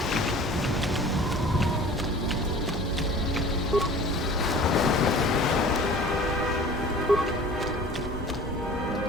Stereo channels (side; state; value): both; normal; correlation 0.44